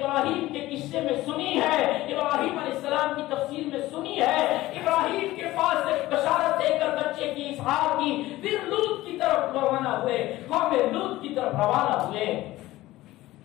کے قصے میں سنی ہے، ابراہیم علیہ السلام کی تفسیر میں سنی ہے. ابراہیم کے پاس ایک بشارت دے کر بچے کی اسحاق کی، پھر لوط کی طرف روانہ ہوئے، قوم لوط کی طرف روانہ ہوئے.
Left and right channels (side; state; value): right; quieter; 17.1 dB